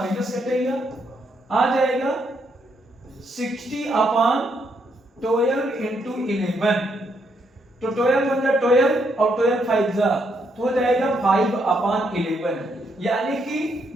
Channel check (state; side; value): normal; both; correlation 0.75